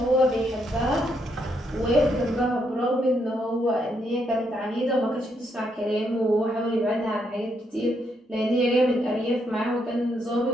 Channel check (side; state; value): both; normal; correlation 0.77